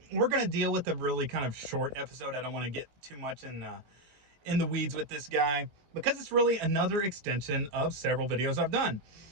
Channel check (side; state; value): left; late; 19 ms